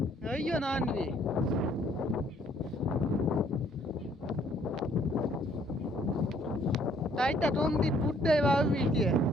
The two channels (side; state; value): both; normal; correlation 0.63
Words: જોયો નાનવી તાઈતા ટોમથી ટૂટદાય વાવવી છે